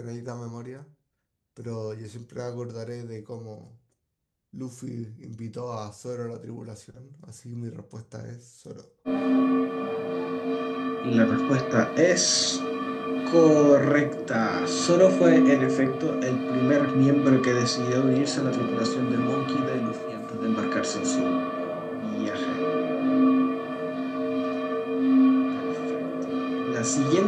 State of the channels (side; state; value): both; identical; correlation 1.00